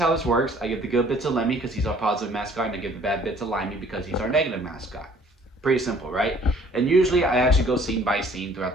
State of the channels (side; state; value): both; normal; correlation 0.56